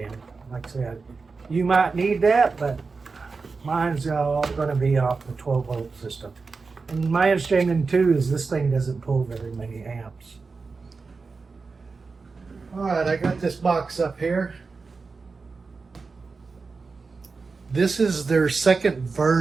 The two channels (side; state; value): left; quieter; 4.4 dB